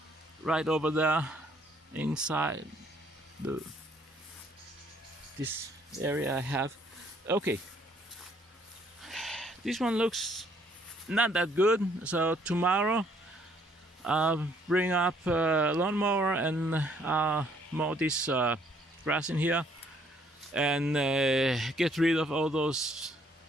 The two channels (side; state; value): both; normal; correlation 0.65